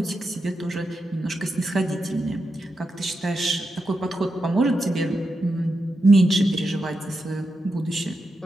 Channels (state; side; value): normal; both; correlation 0.87